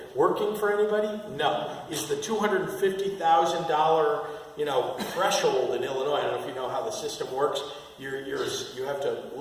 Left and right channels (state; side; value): identical; both; correlation 1.00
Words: working for anybody? No. Is the $250,000 threshold in Illinois, I don't know if you know how the system works, you have to